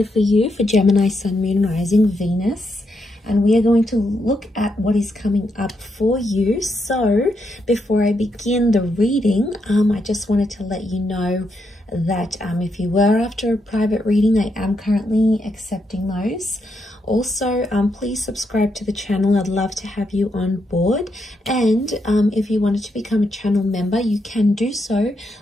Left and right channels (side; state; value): both; normal; correlation 0.81